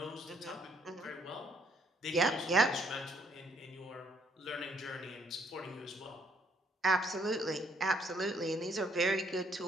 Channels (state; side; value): normal; both; correlation 0.67